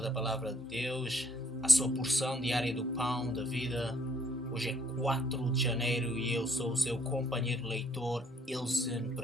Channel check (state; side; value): normal; both; correlation 0.64